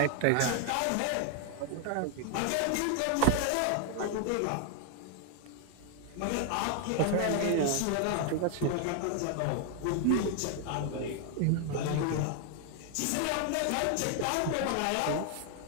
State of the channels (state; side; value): different; both; correlation 0.00